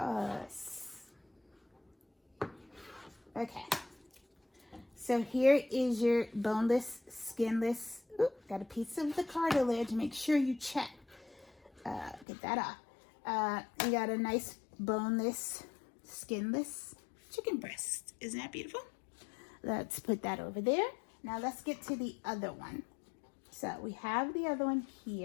Okay. So here is your boneless, skinless. Oop, got a piece of the cartilage. Make sure you check. Get that off. You got a nice boneless, skinless chicken breast. Isn't that beautiful? Let's put that over there. Now let's get to the other one. So we have the other one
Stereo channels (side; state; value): right; drops out; at 12.2 s